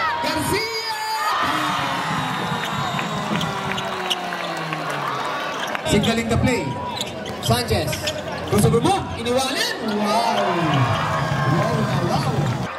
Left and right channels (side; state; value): both; identical; correlation 1.00